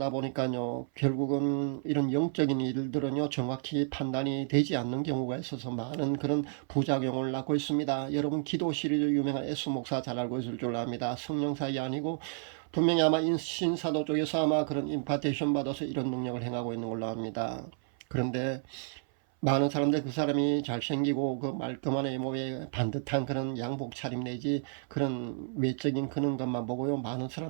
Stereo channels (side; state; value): left; silent; 56 dB below the other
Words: 보니까요, 결국은 이런 영적인 일들은요, 정확히 판단이 되지 않는 경우가 있어서 많은 그런 부작용을 낳고 있습니다. 여러분 기도 시리즈 유명한 에스 목사 잘 알고 있을 줄 압니다. 성령사이 아니고 분명히 아마 신사도 쪽에서 아마 그런 임파테이션 받아서 이런 능력을 행하고 있는 걸로 압니다. 그런데 많은 사람들 그 사람이 잘생기고 그 말끔한 외모에 반듯한 그런 양복 차림 내지 그런 외적인 그런 것만 보고요. 많은